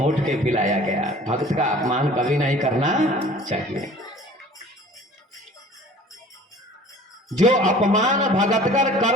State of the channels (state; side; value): normal; both; correlation 0.47